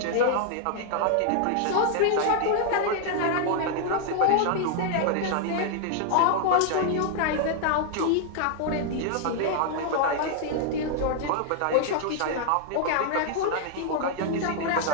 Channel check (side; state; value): both; different; correlation 0.00